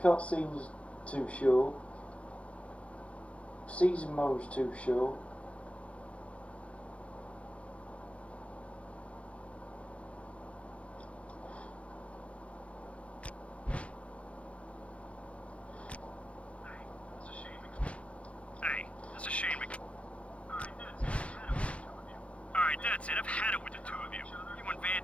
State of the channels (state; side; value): late; right; 0.062 ms